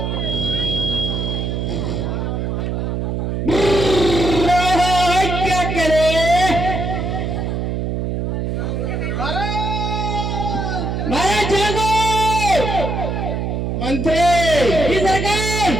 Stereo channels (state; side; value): noise; right; hum, 1 dB below the sound